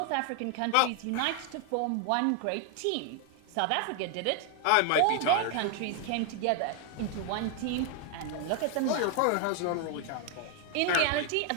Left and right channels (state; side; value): different; both; correlation 0.01